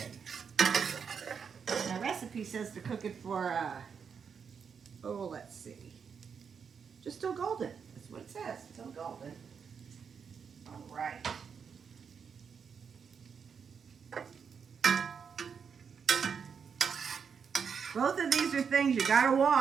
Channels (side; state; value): left; quieter; 6.5 dB